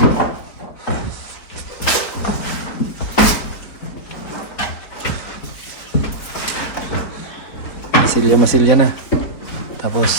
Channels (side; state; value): right; late; 4.5 ms